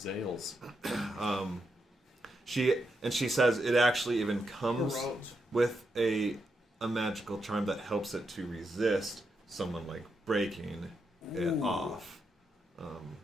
she says it actually even comes Roads. with a magical charm that helps it to resist someone like breaking it off.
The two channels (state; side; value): normal; both; correlation 0.83